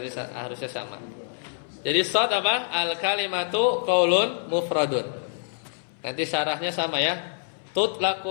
harusnya sama. Jadi shad apa? Al kalimatu qaulun mufradun. Nanti syarahnya sama ya.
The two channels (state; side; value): silent; right; 60 dB below the other